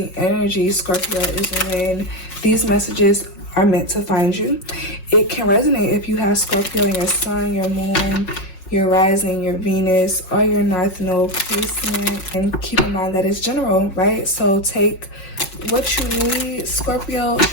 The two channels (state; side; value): late; right; 5.5 ms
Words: energy, Scorpio, is when these messages are meant to find you. It can resonate if you have Scorpio in your sun, your moon, your rising, your Venus, or your North Node placement. And keep in mind that it's general, right? So take what you need, Scorpio,